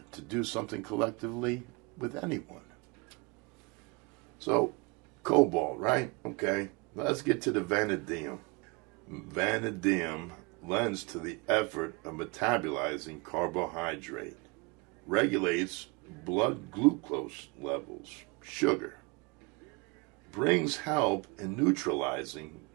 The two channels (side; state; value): left; quieter; 28.1 dB